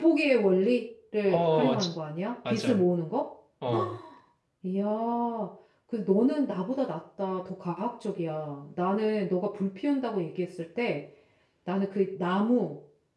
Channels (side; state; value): both; identical; correlation 1.00